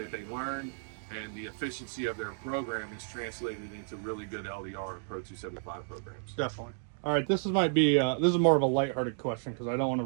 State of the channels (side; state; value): left; silent; digital silence